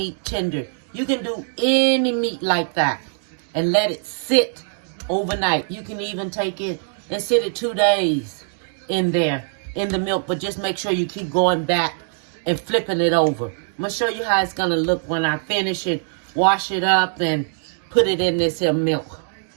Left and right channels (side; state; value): left; silent; 64 dB below the other